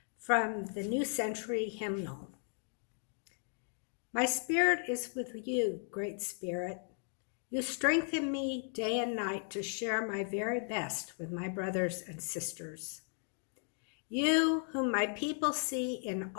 from the New Century Hymnal. My spirit is with you, Great Spirit. You strengthen me day and night to share my very best with my brothers and sisters. You, whom my people see in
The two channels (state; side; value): silent; right; 54 dB below the other